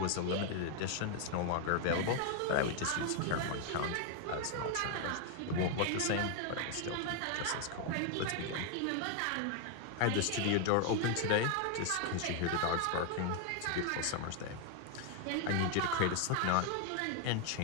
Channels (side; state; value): both; different; correlation 0.01